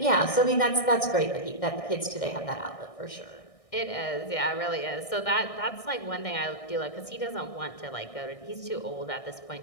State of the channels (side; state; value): right; late; 1.6 ms